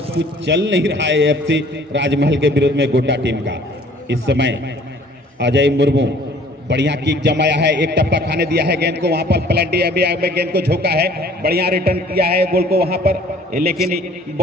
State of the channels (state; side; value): normal; both; correlation 0.54